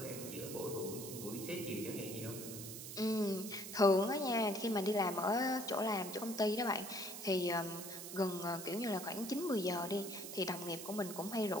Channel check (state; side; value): noise; right; hiss, 9 dB below the sound